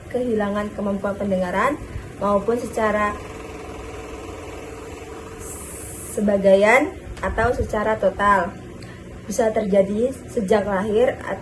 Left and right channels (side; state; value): both; identical; correlation 1.00